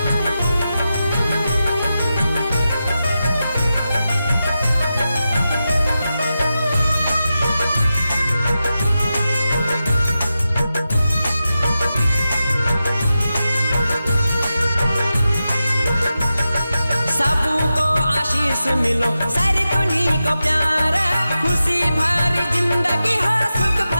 सबको आशीष मिलो, सारी दुनिया को प्यार, खुशी भरी जिंदगी हो, सुख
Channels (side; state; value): both; inverted; correlation -0.91